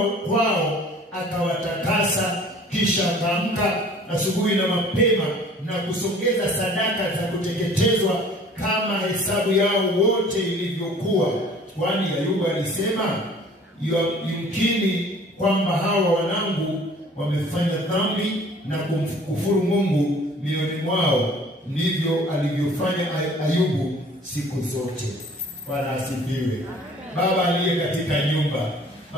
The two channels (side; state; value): both; normal; correlation 0.51